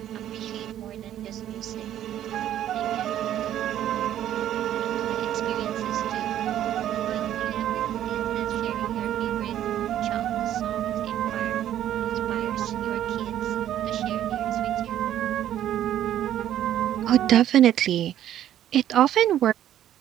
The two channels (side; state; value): left; quieter; 11.5 dB